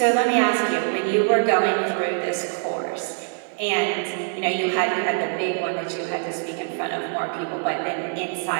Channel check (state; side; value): silent; left; 58 dB below the other